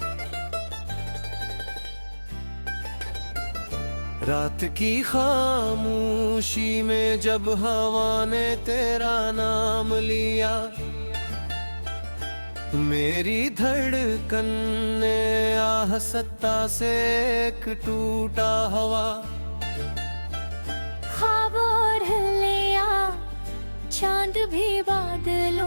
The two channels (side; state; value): both; inverted; correlation -1.00